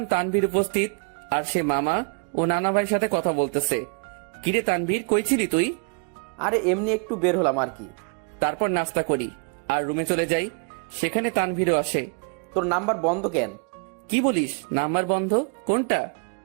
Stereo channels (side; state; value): left; quieter; 38.6 dB